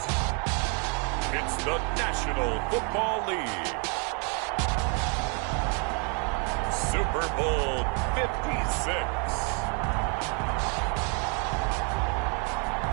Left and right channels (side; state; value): left; quieter; 37.2 dB